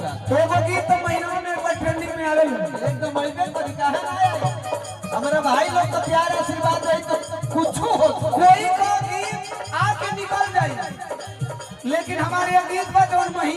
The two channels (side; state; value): both; identical; correlation 1.00